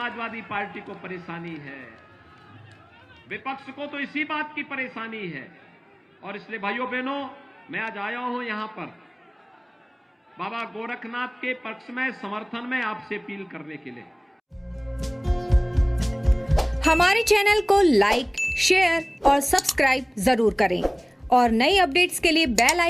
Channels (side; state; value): both; identical; correlation 1.00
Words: पार्टी को परेशानी है, विपक्ष को तो इसी बात की परेशानी है। और इसलिए भाइयों बहनों, मैं आज आया हूं यहां पर बाबा गोरखनाथ के पक्ष में, समर्थन में आपसे अपील करने के लिए। हमारे चैनल को लाइक, शेयर और सब्सक्राइब जरूर करें और नई अपडेट्स के लिए बेल